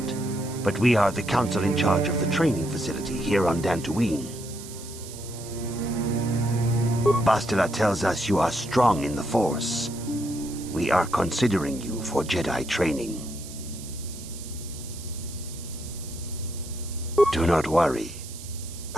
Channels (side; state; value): right; noise; hiss, 14 dB below the sound